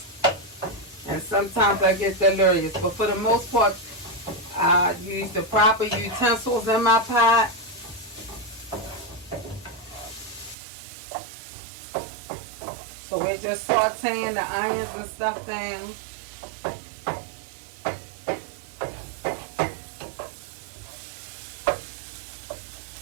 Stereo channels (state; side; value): drops out; left; at 10.6 s